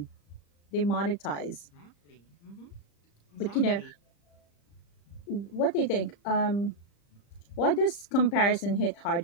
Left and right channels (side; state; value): right; late; 35 ms